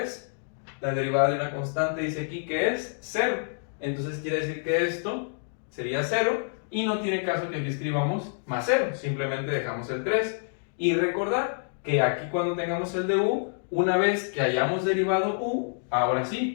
la derivada de una constante dice aquí que es 0. Entonces quiere decir que esto sería 0 y no tiene caso que aquí escribamos más 0, simplemente dejamos el 3. Y recordar que aquí cuando tengamos el de u, una vez que hayamos derivado u, ahora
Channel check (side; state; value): right; silent; digital silence